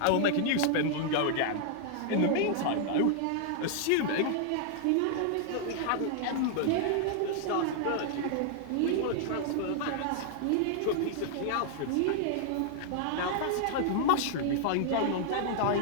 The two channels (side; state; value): both; different; correlation -0.01